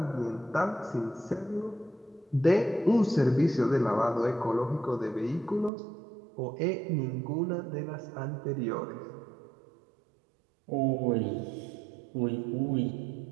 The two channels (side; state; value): left; drops out; at 5.7 s